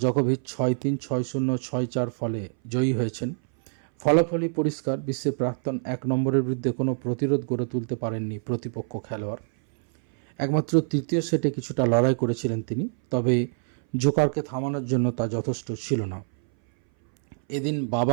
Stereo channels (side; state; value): left; silent; 60 dB below the other